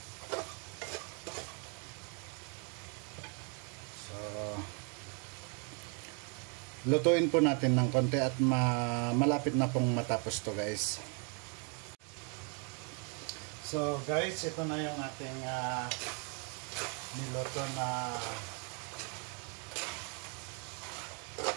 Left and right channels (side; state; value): left; quieter; 37.6 dB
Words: Lutuin po natin ng konti at malapit na pong matapos to guys. So guys, ito na yung ating niluto na